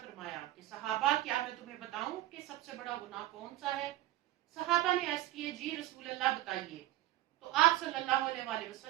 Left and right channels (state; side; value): quieter; left; 15.6 dB